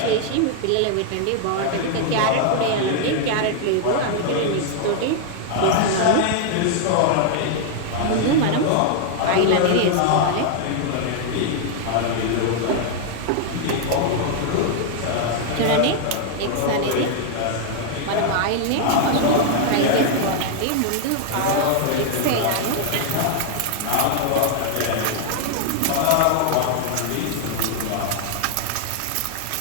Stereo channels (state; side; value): different; both; correlation 0.00